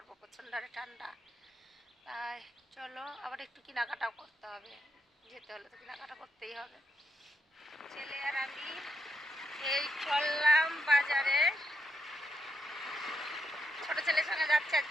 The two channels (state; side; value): normal; both; correlation 0.81